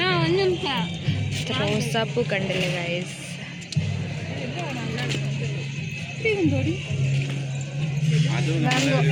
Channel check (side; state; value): both; identical; correlation 1.00